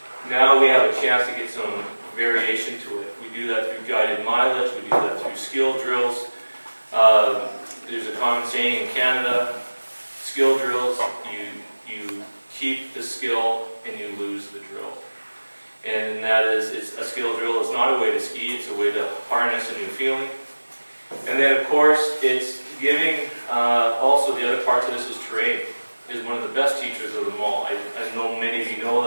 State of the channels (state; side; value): inverted; both; correlation -1.00